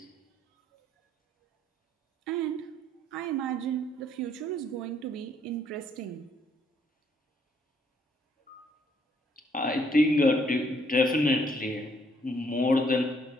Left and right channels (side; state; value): both; normal; correlation 0.68